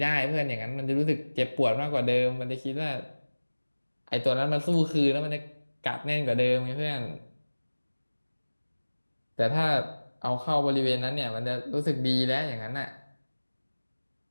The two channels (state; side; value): inverted; both; correlation -1.00